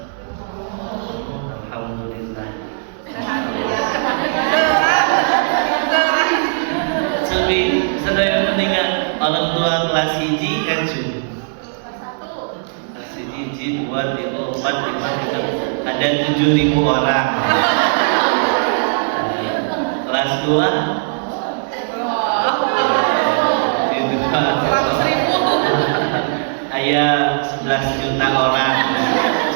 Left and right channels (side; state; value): left; silent; digital silence